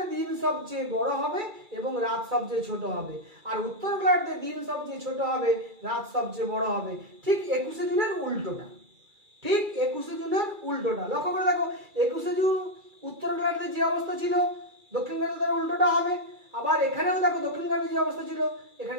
দিন সবচেয়ে বড় হবে এবং রাত সবচেয়ে ছোট হবে, আর উত্তর গোলার্ধে দিন সবচেয়ে ছোট হবে, রাত সবচেয়ে বড় হবে। ঠিক 21শে জুনের উল্টোটা। ঠিক 21শে জুনের উল্টোটা। লক্ষ্য করে দেখো, 21শে জুন উত্তর গোলার্ধে যে অবস্থা ছিল দক্ষিণ গোলার্ধে তার উল্টোটা হবে। আবার এখানেও দেখো দক্ষিণ গোলার্ধে যে অবস্থা ছিল এখানে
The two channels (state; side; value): late; left; 2.3 ms